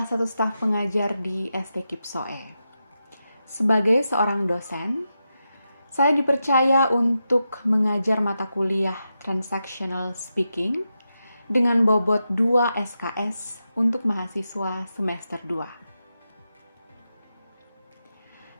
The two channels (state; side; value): inverted; both; correlation -0.88